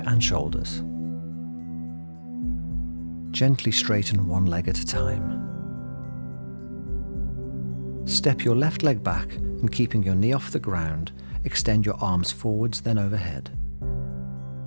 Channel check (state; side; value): inverted; both; correlation -1.00